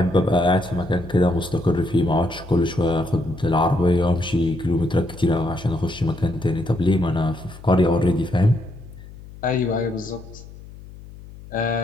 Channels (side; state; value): left; noise; hum, 17 dB below the sound